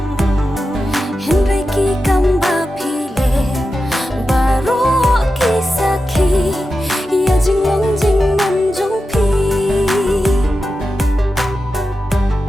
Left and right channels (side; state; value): both; normal; correlation 0.91